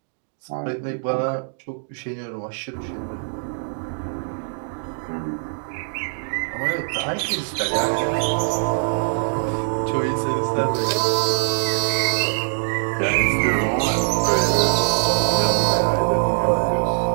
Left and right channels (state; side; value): silent; left; digital silence